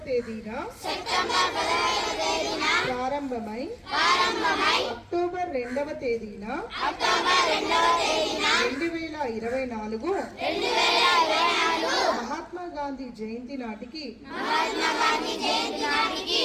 తేదీన ప్రారంభమై అక్టోబర్ 2వ తేదీన 2024 మహాత్మా గాంధీ జయంతి నాటికి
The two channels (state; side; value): identical; both; correlation 1.00